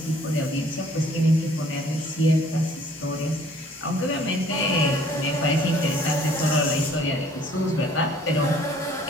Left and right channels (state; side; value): normal; both; correlation 0.57